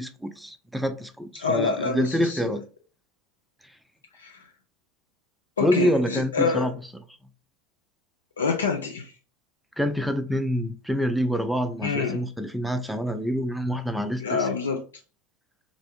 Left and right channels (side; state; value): both; normal; correlation 0.45